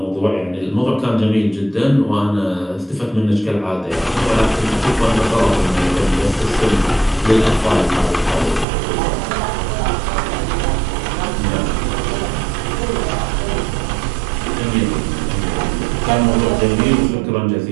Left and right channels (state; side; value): drops out; left; at 8.7 s